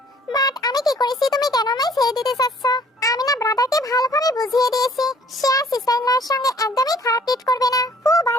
বাট আমি কি করেছি তুমি কেন আমায় ছেড়ে দিতে চাচ্ছ? আমি না ব্রাদারকে ভালোভাবে বুঝিয়ে দিয়েছি সে আর সিস্টার ইন লয়ের সঙ্গে একদমই খারাপ ট্রিট করবে না। ফু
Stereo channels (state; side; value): normal; both; correlation 0.57